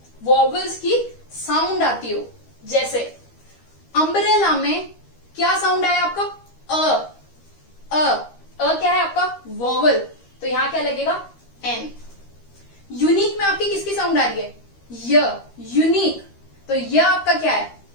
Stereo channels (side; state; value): right; late; 13 ms